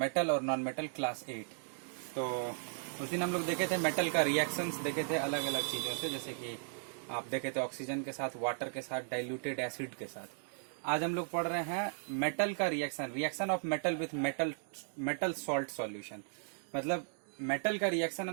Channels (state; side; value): silent; left; digital silence